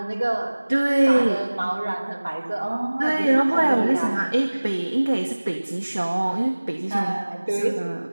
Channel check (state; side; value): inverted; both; correlation -1.00